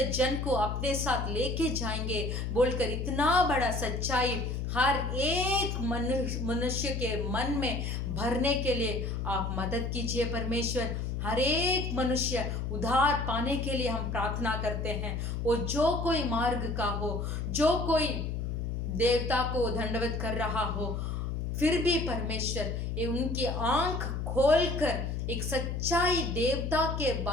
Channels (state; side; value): noise; left; hum, 2 dB below the sound